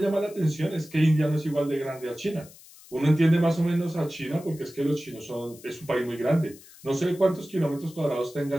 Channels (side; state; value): left; noise; hiss, 22 dB below the sound